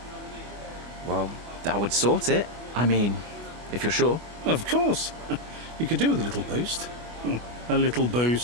Well, that would sort it. I mean, if you're sure. Of course. You could do with a little boost. A little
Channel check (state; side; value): late; left; 25 ms